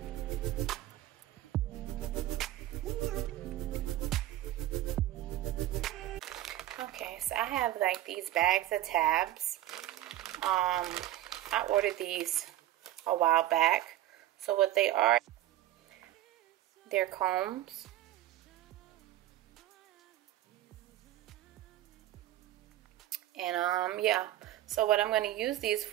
Okay, so I have like these bags of tabs. I ordered these a while back. So what they are, they're combs. And yeah, so what I'm going to use these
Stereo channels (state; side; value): quieter; left; 14.2 dB